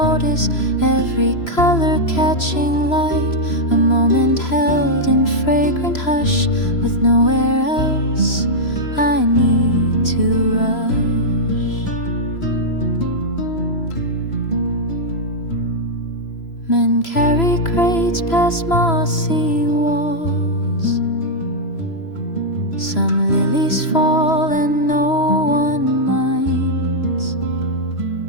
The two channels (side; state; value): right; late; 3.0 ms